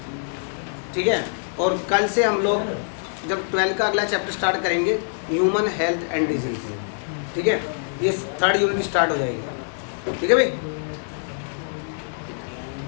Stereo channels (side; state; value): right; silent; 63 dB below the other